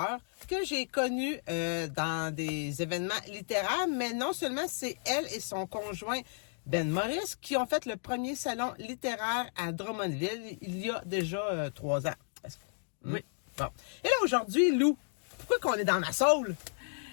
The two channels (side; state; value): right; silent; digital silence